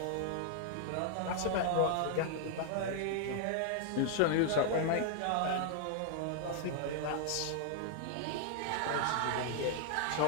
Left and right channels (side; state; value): both; different; correlation 0.00